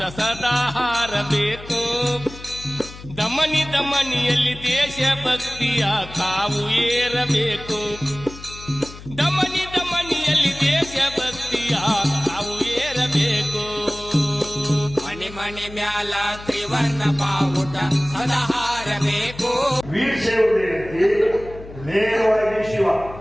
ಸದಾ ಹಾರಬೇಕು. ದಮನಿ ದಮನಿಯಲ್ಲಿ ದೇಶ ಭಕ್ತಿಯ ಕಾವು ಏರಬೇಕು. ದಮನಿ ದಮನಿಯಲ್ಲಿ ದೇಶ ಭಕ್ತಿಯ ಕಾವು ಏರಬೇಕು. ಮನಿ ಮನಿ ಮ್ಯಾಲ ತ್ರಿವರ್ಣ ಬಾವುಟ ಸದಾ ಹಾರಬೇಕು. ವೀರಶೈವ ಏನೈತಿ ನೇರವಾಗಿ ಶಿವ,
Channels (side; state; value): left; noise; hum, 15 dB below the sound